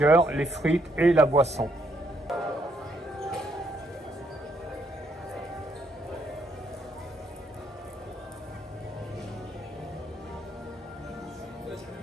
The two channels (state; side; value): normal; both; correlation 0.73